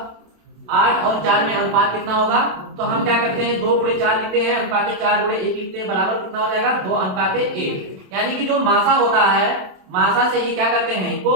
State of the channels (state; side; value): late; left; 27 ms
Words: 8 और 4 में अनुपात कितना होगा, तो हम क्या करते हैं 2 गुणे 4 लिखते हैं, अनुपात 4 गुणे 1 लिखते हैं, बराबर कितना हो जाएगा 2 अनुपात 1। यानी कि जो मासा होता है, मासा से ये क्या करते हैं, इनको